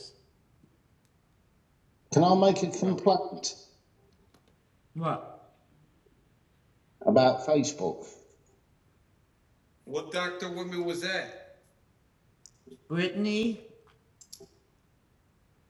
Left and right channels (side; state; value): both; identical; correlation 1.00